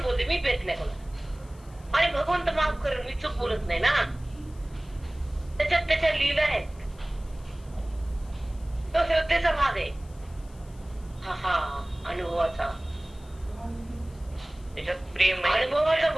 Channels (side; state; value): left; noise; hiss, 27 dB below the sound